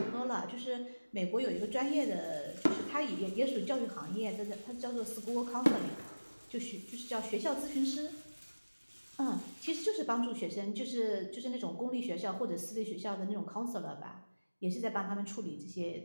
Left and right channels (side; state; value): both; inverted; correlation -1.00